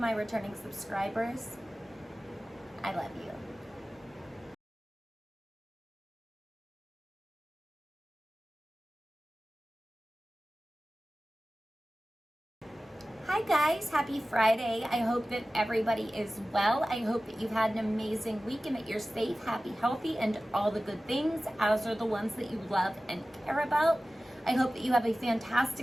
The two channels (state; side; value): normal; both; correlation 0.96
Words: returning subscribers, I love you. Hi guys, happy Friday. I hope that everybody is well. I hope that you've had an amazing week and that you're safe, happy, healthy, and all the good things, as are the ones that you love and care about. I hope that you have a